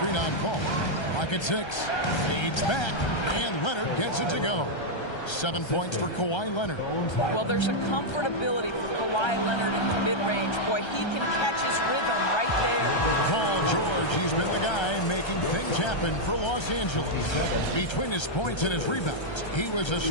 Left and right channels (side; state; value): right; late; 1.3 ms